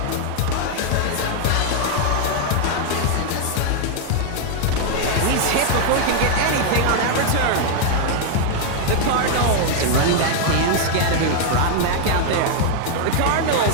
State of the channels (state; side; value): different; both; correlation 0.00